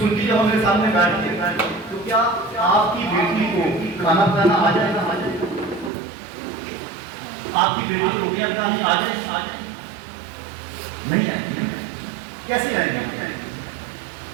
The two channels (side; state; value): left; drops out; at 5.9 s